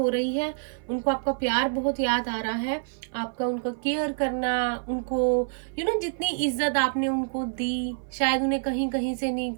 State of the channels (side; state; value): left; silent; 55 dB below the other